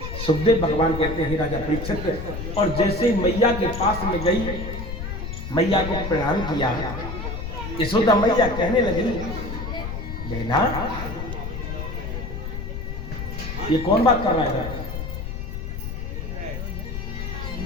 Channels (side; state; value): left; noise; rumble, 6 dB below the sound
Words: सुखदेव भगवान कहते हैं राजा परीक्षित, और जैसे मैया के पास में गई, मैया को प्रणाम किया, यशोदा मैया कहने लगी बेना ये कौन बात कर रहा है?